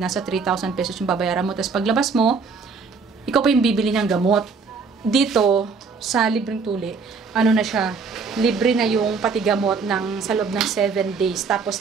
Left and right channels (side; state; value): left; quieter; 5.0 dB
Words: 3,000 pesos yung babayaran mo, tapos paglabas mo ikaw pa yung bibili ng gamot. Dito sa libreng tuli na siya, libre na yung pati gamot sa loob ng 7 days.